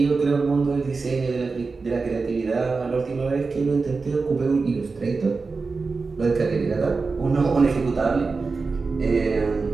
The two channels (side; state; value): left; quieter; 4.3 dB